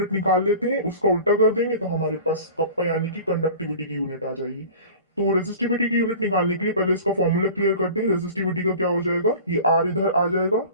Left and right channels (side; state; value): both; inverted; correlation -0.40